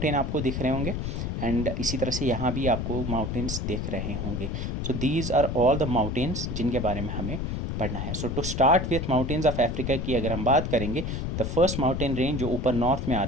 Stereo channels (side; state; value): left; noise; rumble, 2 dB below the sound